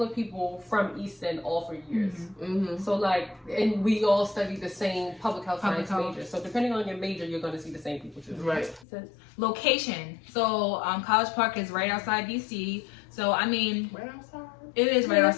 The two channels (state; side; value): drops out; right; at 8.8 s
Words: of people from Easton all 4 years. So like, and we all studied the same public health science major. So depending on your major, you're going to see the same people too. Right. Location. So College Park is right outside DC. So I mean, Right outside. It is right